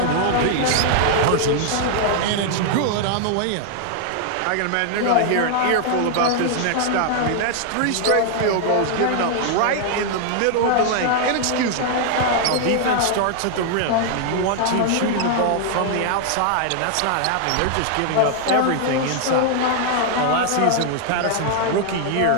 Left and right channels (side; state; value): both; different; correlation 0.00